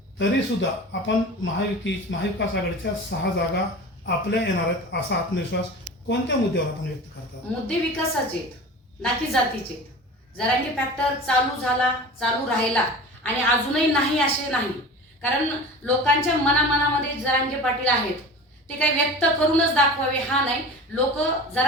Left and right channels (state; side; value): normal; both; correlation 0.35